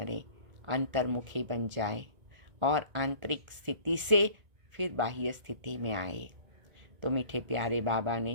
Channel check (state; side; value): late; left; 1.5 ms